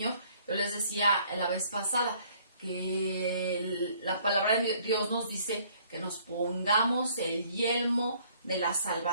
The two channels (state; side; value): inverted; both; correlation -0.60